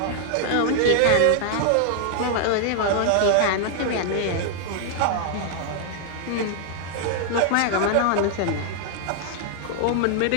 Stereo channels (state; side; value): different; both; correlation 0.00